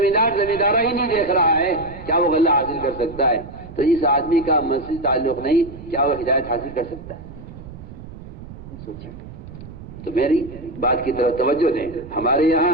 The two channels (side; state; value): right; noise; rumble, 14 dB below the sound